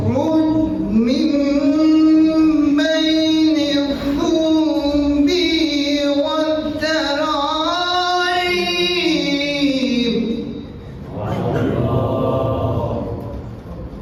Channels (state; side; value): identical; both; correlation 1.00